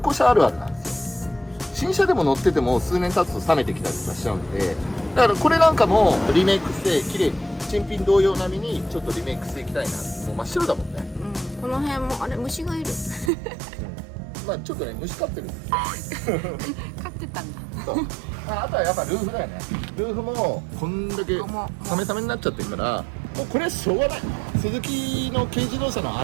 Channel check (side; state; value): left; drops out; at 13.3 s